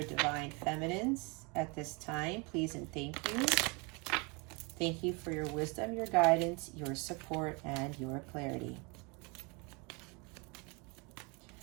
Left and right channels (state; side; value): quieter; left; 30.0 dB